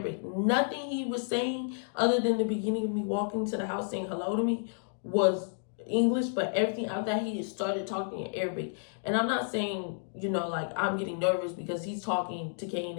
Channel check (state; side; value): silent; right; digital silence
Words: Nothing he was saying other than the beginning of me walking to the house saying hello to me was English, but everything after that he just started talking in Arabic. And I'm not saying, you know, like I'm getting nervous because he's talking to Kane